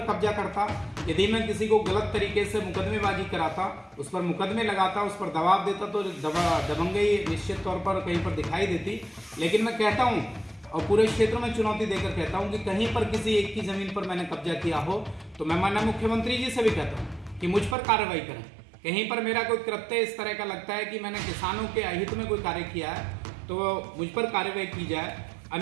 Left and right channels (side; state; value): left; drops out; at 17.8 s